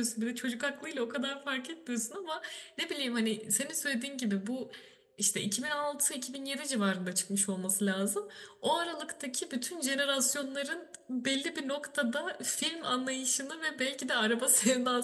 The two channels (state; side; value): identical; both; correlation 1.00